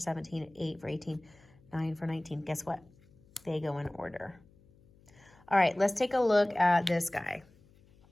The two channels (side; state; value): left; noise; hum, 28 dB below the sound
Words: an 8 for 18, 9 for 19. Guess what? They go in order. All right, let's take a look at this guy.